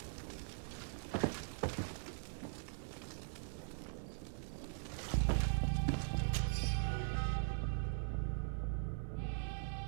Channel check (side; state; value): left; silent; 50 dB below the other